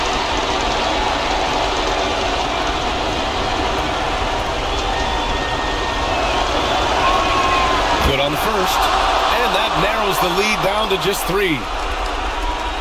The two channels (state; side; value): identical; both; correlation 1.00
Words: Good on the first, and that narrows the lead down to just three.